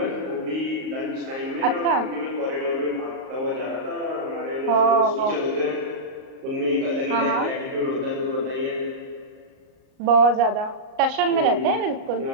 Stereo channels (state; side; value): late; left; 38 ms